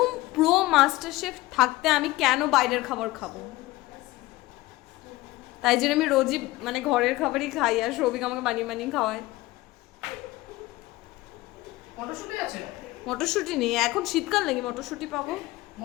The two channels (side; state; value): right; quieter; 18.9 dB